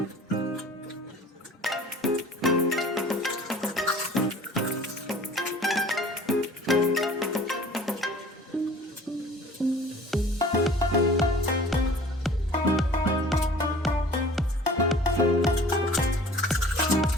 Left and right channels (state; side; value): normal; both; correlation 0.47